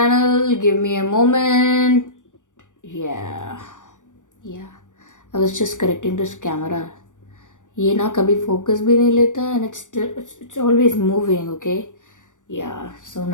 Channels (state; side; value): late; right; 0.87 ms